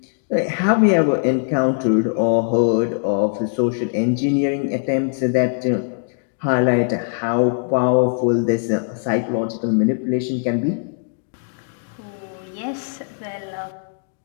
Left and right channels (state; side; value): silent; right; 65 dB below the other